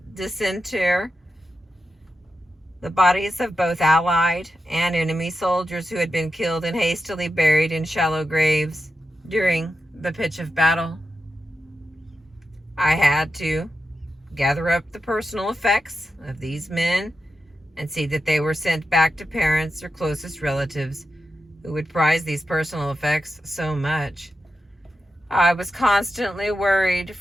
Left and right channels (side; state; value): both; normal; correlation 0.89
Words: disinter the bodies of both Allied and enemy soldiers who had been killed and hastily buried in shallow graves during the pitch of battle. I had to gather up the personal effects of these men and see that they were sent back to parents or closest relatives who would prize these personal effects so much. I was constantly worried